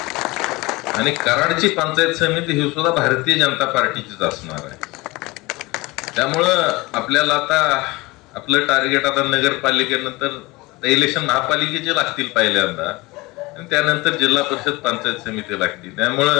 आणि कराडची पंचायत समिती ही सुद्धा भारतीय जनता पार्टीचीच असणार आहे. त्यामुळं आपल्याला आता आपलं टार्गेट आता नगरपालिकेनंतर इलेक्शन महापालिकेचे लागतील पहिल्यांदा, आणि त्यानंतर जिल्हा परिषद पंचायत समिती लागतील.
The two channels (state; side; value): quieter; right; 22.6 dB